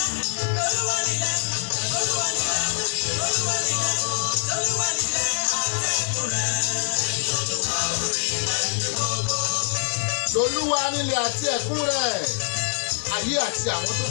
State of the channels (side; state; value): right; silent; digital silence